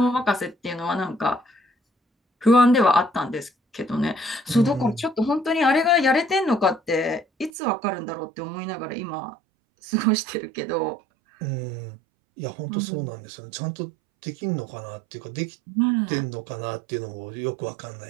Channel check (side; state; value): left; drops out; at 7.5 s